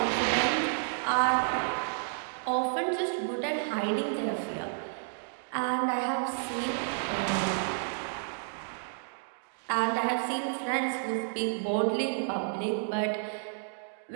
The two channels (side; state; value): left; silent; digital silence